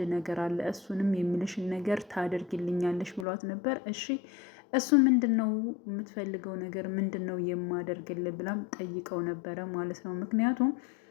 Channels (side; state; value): right; drops out; at 3.2 s